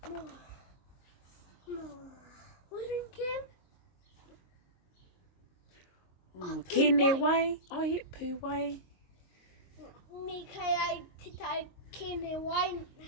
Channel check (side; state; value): right; late; 22 ms